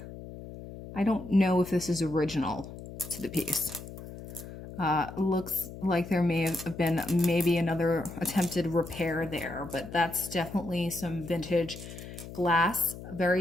I don't know if this is original to the piece. Looks like there may have been maybe another attempted repair there, but that's definitely some vintage glass.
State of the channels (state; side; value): noise; left; hum, 13 dB below the sound